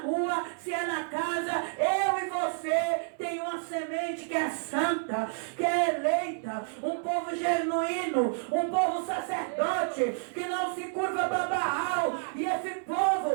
se é na casa. Eu e você tem uma semente que é santa, que é eleita, um povo genuíno, um povo sacerdote, que não se curva para Baal. E esse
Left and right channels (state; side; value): silent; left; 58 dB below the other